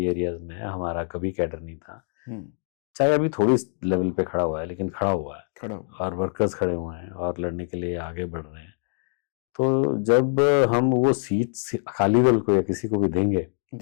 एरियाज में हमारा कभी कैडर नहीं था, चाहे अभी थोड़ी लेवल पे खड़ा हुआ है लेकिन खड़ा हुआ है और वर्कर्स खड़े हुए हैं और लड़ने के लिए आगे बढ़ रहे हैं। तो जब हम वो सीट अकाली दल को या किसी को भी देंगे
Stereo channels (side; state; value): right; silent; digital silence